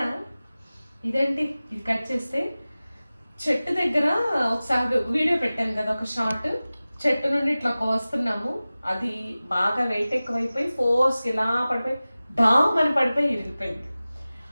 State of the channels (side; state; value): both; inverted; correlation -0.97